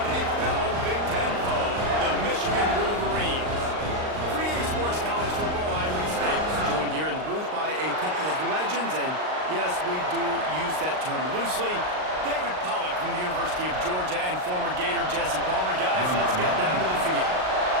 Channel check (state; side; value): late; left; 39 ms